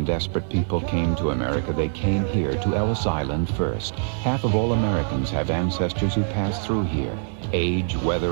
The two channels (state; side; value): silent; left; digital silence